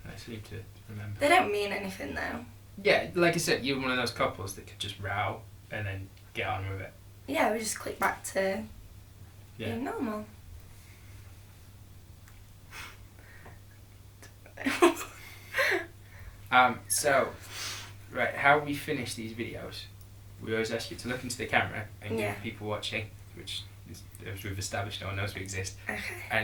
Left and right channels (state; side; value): identical; both; correlation 1.00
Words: seem to remember. they don't mean anything though. Yeah, like I said, you're one of those couples that could just row and then get on with it. Yeah, we just click back to being normal. So, right, how we finish these videos, we always ask you to look into the camera and give people watching, which is, as we've established, no one knows we exist, Okay.